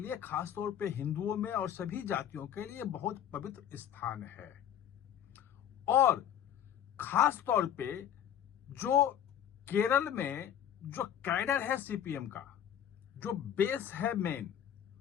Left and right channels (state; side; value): quieter; right; 9.9 dB